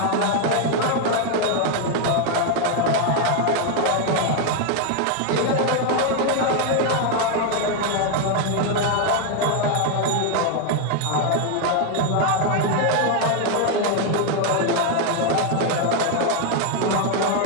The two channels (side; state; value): both; different; correlation 0.01